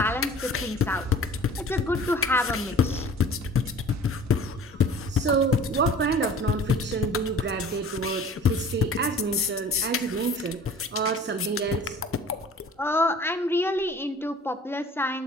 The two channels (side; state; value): both; normal; correlation 0.46